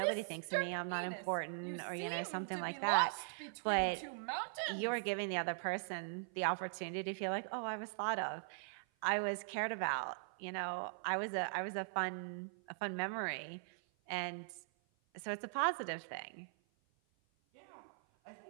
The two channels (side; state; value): left; silent; 51 dB below the other